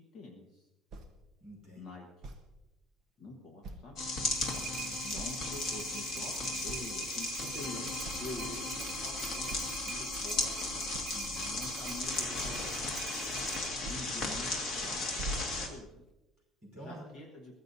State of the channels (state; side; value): normal; both; correlation 0.50